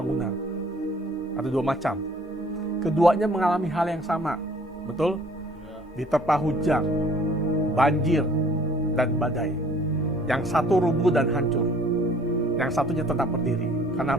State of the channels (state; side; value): normal; both; correlation 0.55